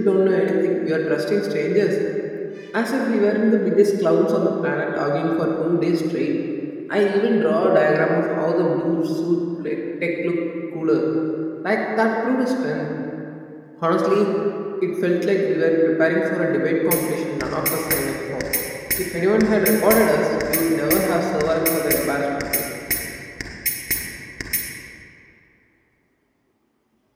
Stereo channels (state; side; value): identical; both; correlation 1.00